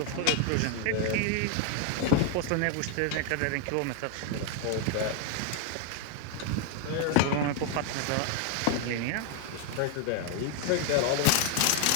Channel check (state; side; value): different; both; correlation 0.00